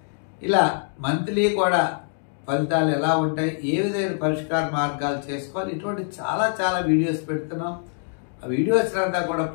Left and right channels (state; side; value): silent; right; digital silence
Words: ఇలా మంత్లీ కూడా ఫలితాలు ఎలా ఉంటాయి, ఏ విధమైన పరిష్కార మార్గాలు చేసుకోవాలి, ఇటువంటి చాలా వీడియోస్ పెడుతున్నాం. ఆ వీడియోస్ అంతా కూడా